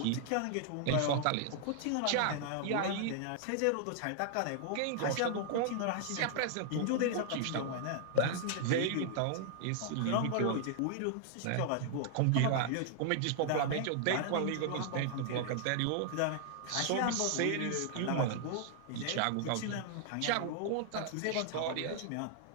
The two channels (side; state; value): both; different; correlation 0.00